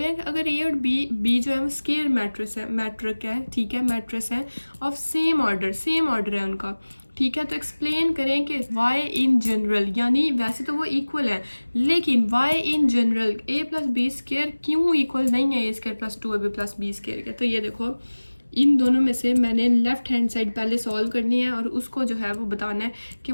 हैं कि अगर A और B जो है वो स्केयर मैट्रिक है, ठीक है, मैट्रिक्स है ऑफ सेम ऑर्डर है उनका, ठीक है। तो एक्सप्लेन करें कि y इन जनरल, यानी वैसे तो वो इक्वल है, लेकिन y in general A + B square क्यों इक्वल नहीं है A square + 2AB + B square के। तो ये देखो इन दोनों में से मैंने लेफ़्ट हैंड साइड पहले सॉल्व करनी है, और उसको जो है वो बताना है कि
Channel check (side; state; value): both; inverted; correlation -1.00